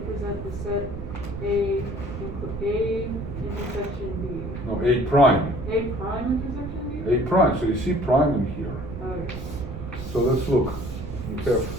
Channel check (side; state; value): right; noise; rumble, 8 dB below the sound